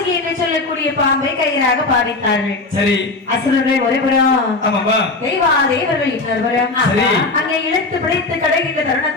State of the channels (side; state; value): right; quieter; 3.4 dB